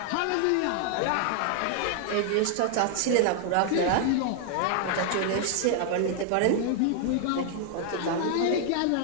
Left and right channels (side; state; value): both; different; correlation 0.00